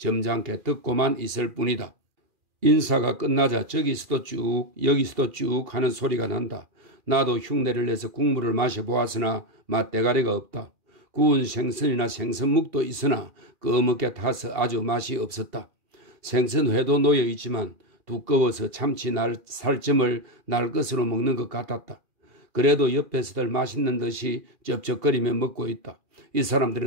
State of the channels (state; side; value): late; left; 2.4 ms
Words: 듣고만 있을 뿐이다. 인사가 끝나자 저기서도 쭉 여기서도 쭉 하는 소리가 난다. 나도 흉내를 내서 국물을 마셔보았으나 맛대가리가 없다. 구운 생선이나 생선묵도 있으나 꺼멓게 타서 아주 맛이 없었다. 생선회도 놓여있지만 두꺼워서 참치 살점을 날 것으로 먹는 것 같았다. 그래도 옆에서들 맛있는 듯이 쩝쩝거리며 먹고 있다. 이